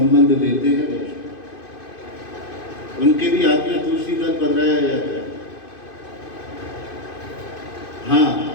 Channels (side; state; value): right; late; 2.5 ms